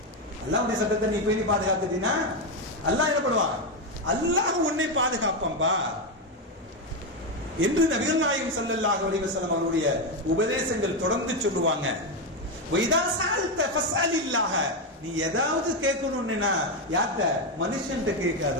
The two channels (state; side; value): normal; both; correlation 0.08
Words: அல்லாஹ்வுடைய சட்டத்தை நீ பேணி பாதுகாத்துட்டீனா அல்லாஹ் என்ன பண்ணுவான்? அல்லாஹ் உன்னை பாதுகாப்பான்பா என்று நபிகள் நாயகம் ஸல்லல்லாஹு அலைஹி வஸல்லம் அவருடைய உபதேசங்கள் தொடர்ந்து சொல்லுவாங்க. வைதா சஅல்த ஃபஸ்அலில்லாஹ, நீ ஏதாவது கேட்கணும்னா யார்ட்ட? மனுஷன்ட்ட